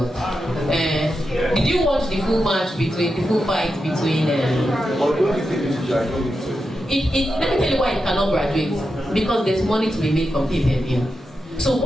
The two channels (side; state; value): both; normal; correlation 0.88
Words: Did you watch the full fight between let me tell you why it cannot graduate. Because there's money to be made from pay-per-view. So